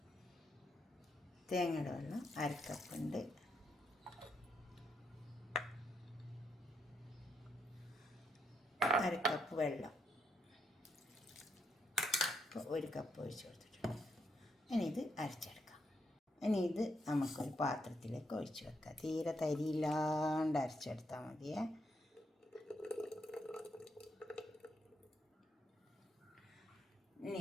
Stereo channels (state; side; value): normal; both; correlation 0.78